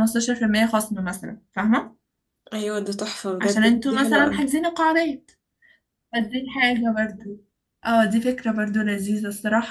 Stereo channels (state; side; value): identical; both; correlation 1.00